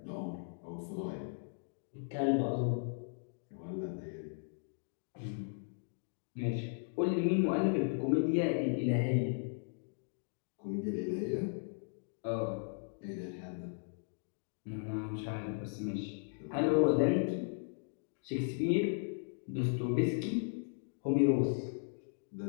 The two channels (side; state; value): right; silent; digital silence